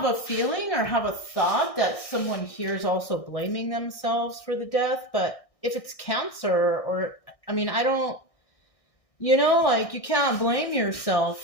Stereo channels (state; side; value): late; right; 1.6 ms